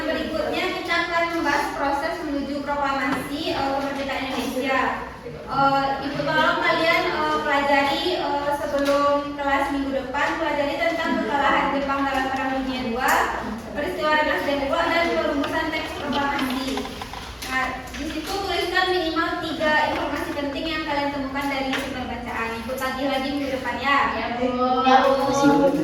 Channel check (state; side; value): identical; both; correlation 1.00